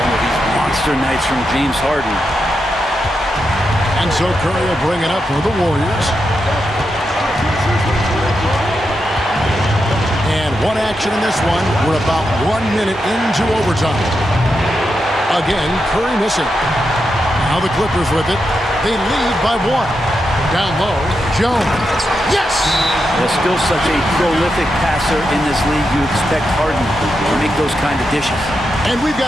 of these monster nights from James Harden. And so Curry will bring it up for the Warriors. And one action in this one. We're about 1 minute into overtime. Again, Curry missing. Now the Clippers with it. They lead by one. Down low, Jones. Yes! There's still such a prolific passer in this league. You expect Harden to make those kind of dishes. And we've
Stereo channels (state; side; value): normal; both; correlation 0.86